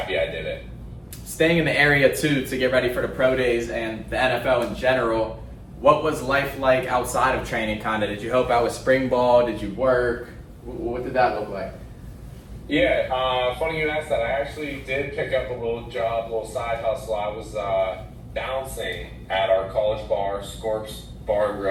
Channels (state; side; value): identical; both; correlation 1.00